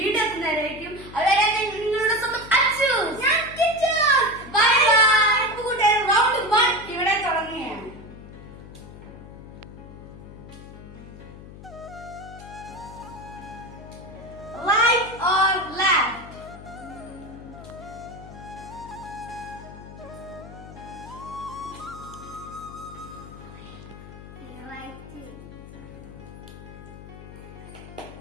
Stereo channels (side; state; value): left; noise; hum, 15 dB below the sound